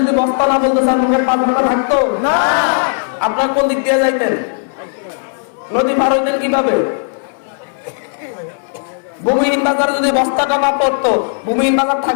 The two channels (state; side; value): silent; right; 68 dB below the other